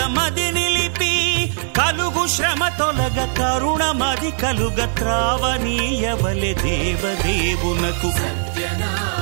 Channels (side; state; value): left; silent; 66 dB below the other